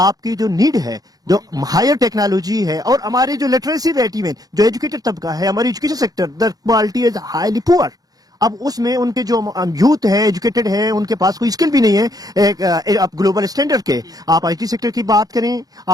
जो नीड है, जो हायर टेक्नोलॉजी है, और हमारी जो लिटरेसी रेट, इवन जो एजुकेटेड तबका है, हमारी education sector the quality is highly poor. अब उसमें उनके जो यूथ है, एजुकेटेड है, उनके पास कोई स्किल भी नहीं है आप ग्लोबल स्टैंडर्ड के। आप आईटी सेक्टर की बात करें,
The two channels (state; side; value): late; left; 0.18 ms